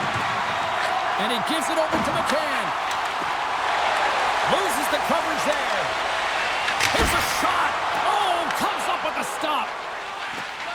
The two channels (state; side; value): identical; both; correlation 1.00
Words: And he gives it over to McCann. Loses the coverage there. Here's a shot. Oh, comes up with a stop.